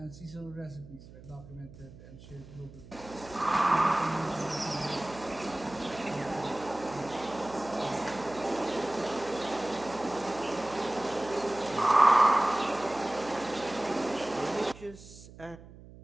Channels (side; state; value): right; noise; hum, 18 dB below the sound